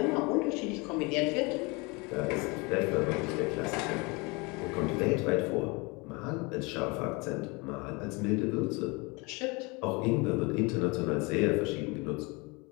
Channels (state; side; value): quieter; right; 27.5 dB